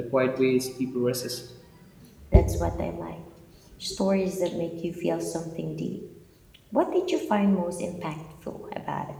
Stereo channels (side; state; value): both; identical; correlation 1.00